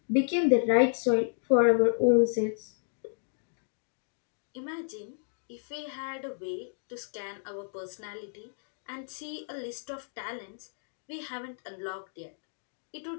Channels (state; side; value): silent; right; digital silence